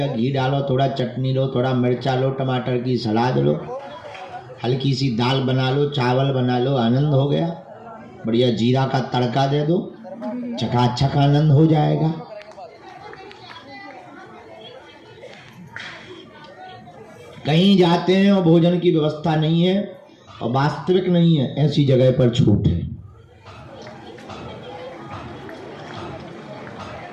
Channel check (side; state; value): both; identical; correlation 1.00